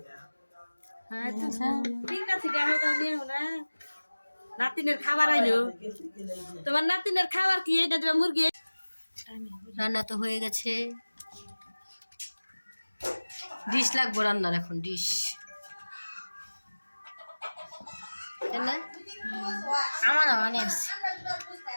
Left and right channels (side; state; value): both; inverted; correlation -1.00